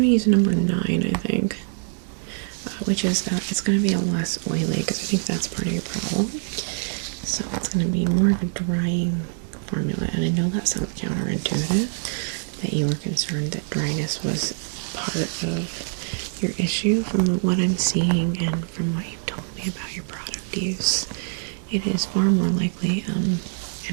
to use number 9, I think, which is, it's going to be a less oily, because I think that's part of your problem. So it's going to be more of a drying formula, and I know that sounds counterintuitive, that you were concerned that dryness was part of your issue. From what I'm seeing and from what you've told me about your product use, it is far more likely an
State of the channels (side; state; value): left; silent; digital silence